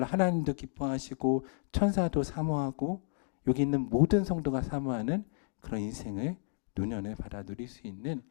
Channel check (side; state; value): right; silent; digital silence